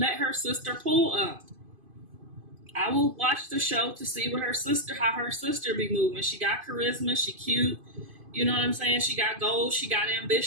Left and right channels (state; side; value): late; left; 2.5 ms